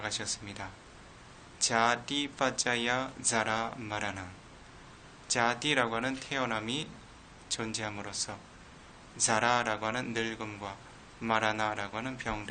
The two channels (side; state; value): both; identical; correlation 1.00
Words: 자디 빠짜야 자라 마라나. 자디라고 하는 태어남이 존재함으로써 자라라고 하는 늙음과 마라나라고 하는